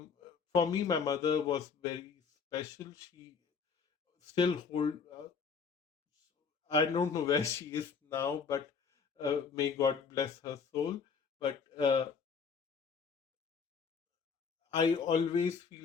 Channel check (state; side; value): quieter; right; 5.8 dB